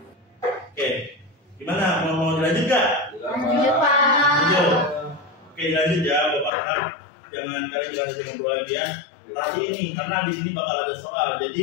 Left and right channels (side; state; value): right; drops out; at 6.5 s